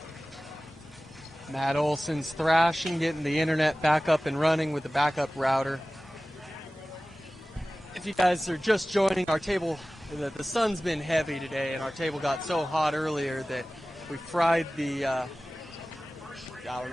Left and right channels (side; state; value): both; normal; correlation 0.97